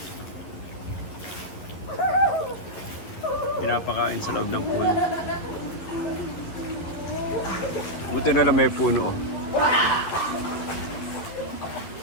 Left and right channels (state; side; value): late; right; 11 ms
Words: Pinapakain sa loob ng pool. Buti na lang may puno. Oh.